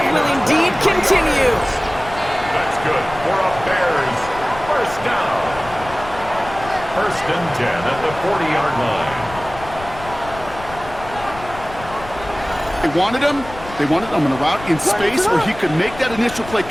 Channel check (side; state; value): left; noise; rumble, 15 dB below the sound